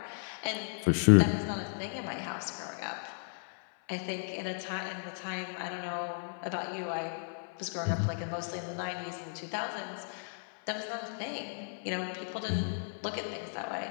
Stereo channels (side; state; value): right; silent; 55 dB below the other